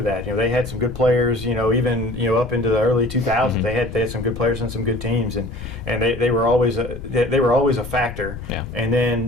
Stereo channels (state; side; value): noise; left; rumble, 11 dB below the sound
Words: that. They had some good players. Even up into the early 2000s, they had some good players and some good teams, and they were always a factor. Yeah. And